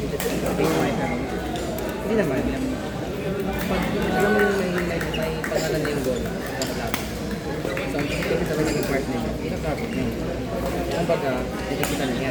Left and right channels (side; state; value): both; identical; correlation 1.00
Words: Hindi naman. Pag alam mo yung may pangalan na yung goal, kakalaban. So, ang execute sa kanyang part nila, kakabot na yun. Ang baga, nakikita na